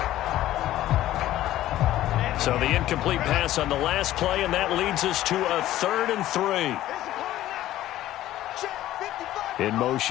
So the incomplete pass on the last play, and that leads us to a 3rd and 3. In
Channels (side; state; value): right; quieter; 14.1 dB